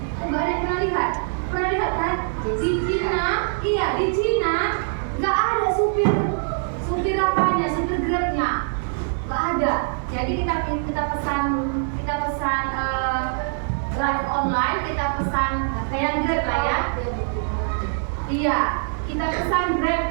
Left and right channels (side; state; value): left; silent; digital silence